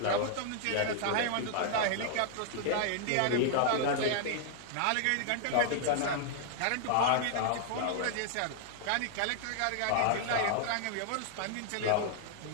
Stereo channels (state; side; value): different; both; correlation -0.01